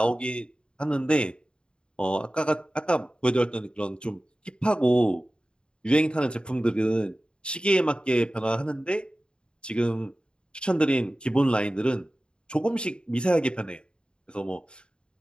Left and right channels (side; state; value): right; late; 0.052 ms